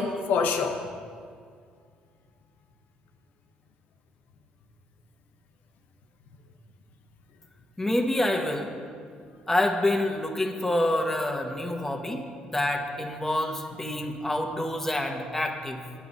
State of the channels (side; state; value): both; normal; correlation 0.85